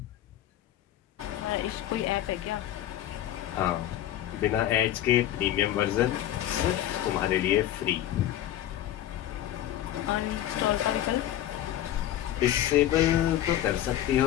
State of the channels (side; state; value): right; quieter; 12.4 dB